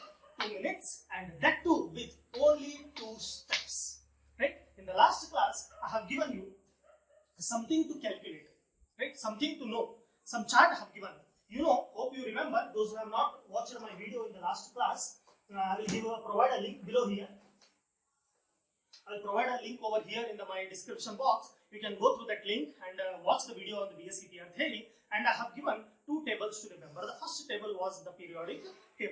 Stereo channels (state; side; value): identical; both; correlation 1.00